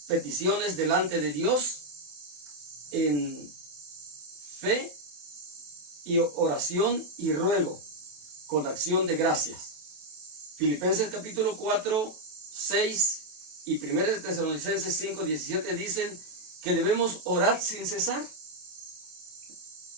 peticiones delante de Dios en fe y oración y ruego, con acción de gracias. Filipenses capítulo 4, 6 y 1 Tesalonicenses 5, 17 dicen que debemos orar sin cesar.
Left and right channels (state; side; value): late; left; 28 ms